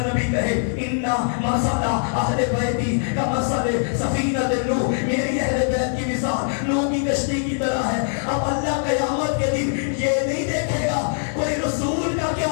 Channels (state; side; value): silent; right; 56 dB below the other